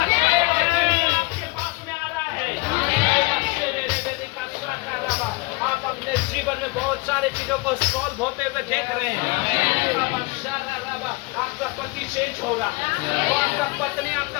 आपके पास में आ रहा है। आप अपने जीवन में बहुत सारे चीजों को सॉल्व होते हुए देख रहे हैं। आपका पति चेंज हो रहा है, आपका पत्नी,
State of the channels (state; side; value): quieter; right; 25.5 dB